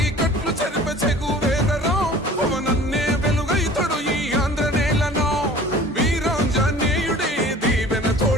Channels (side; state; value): both; normal; correlation 0.45